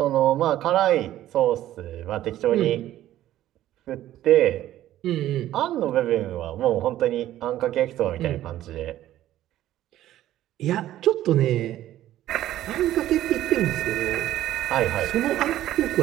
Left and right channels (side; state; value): left; quieter; 13.5 dB